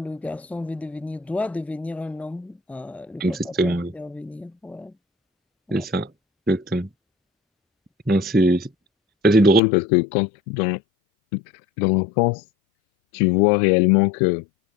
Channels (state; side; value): drops out; right; at 9.6 s